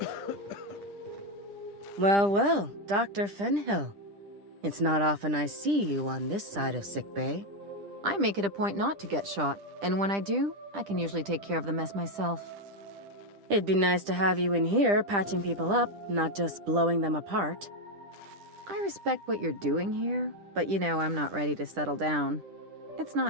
Well, well, Dr. Fenhill. It's not often I see you on this side of sickbay. I make it a point not to get shot, and when I do, I can usually take care of the mess myself. It'd be nice to have you in here patching people up, not just blowing them apart. I respect what you're doing here, but you know I'm not ready to settle down. It's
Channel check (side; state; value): left; late; 10 ms